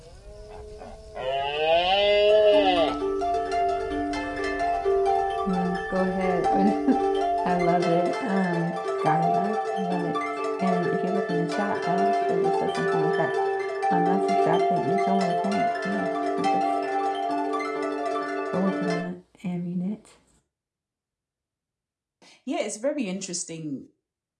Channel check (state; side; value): identical; both; correlation 1.00